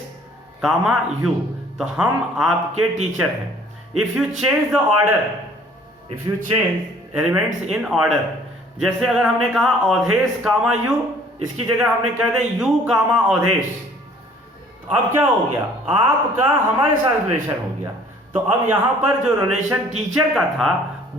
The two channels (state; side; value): normal; both; correlation 0.55